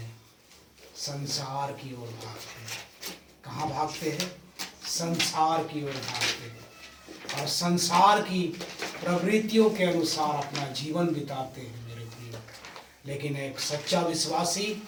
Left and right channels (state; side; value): identical; both; correlation 1.00